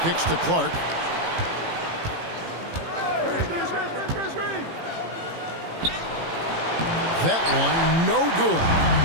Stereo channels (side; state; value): left; late; 18 ms